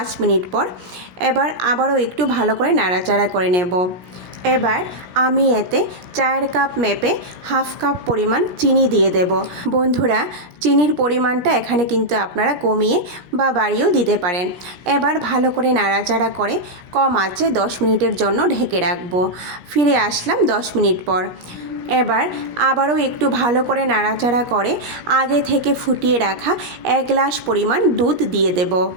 মিনিট পর। এবার আবারও একটু ভালো করে নাড়াচাড়া করে নেব। এবার আমি এতে 4 কাপ মেপে হাফ কাপ পরিমাণ চিনি দিয়ে দেব। বন্ধুরা, চিনির পরিমাণটা এখানে কিন্তু আপনারা কমিয়ে বা বাড়িয়েও দিতে পারেন। এবার ভালো করে নাড়াচাড়া করে কম আঁচে 10 মিনিটের জন্য ঢেকে রাখব। ফিরে আসলাম 10 মিনিট পর। এবার আবারও একটু ভালো করে নাড়াচাড়া করে আগে থেকে ফুটিয়ে রাখা 1 গ্লাস পরিমাণ দুধ দিয়ে দেব।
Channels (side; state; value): left; late; 17 ms